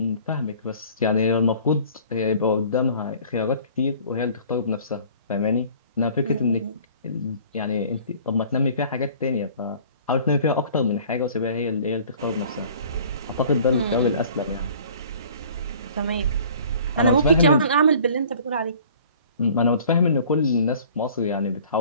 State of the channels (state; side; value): inverted; both; correlation -0.50